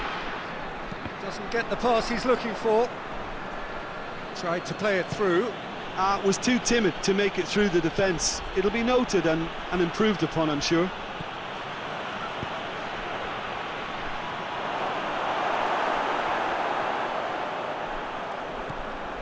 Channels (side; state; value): both; identical; correlation 1.00